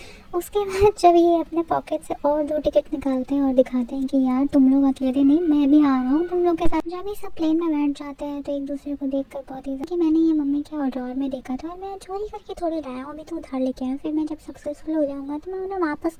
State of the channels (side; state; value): both; identical; correlation 1.00